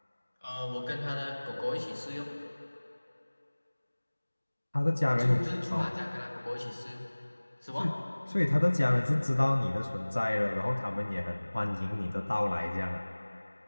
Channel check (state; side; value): inverted; both; correlation -1.00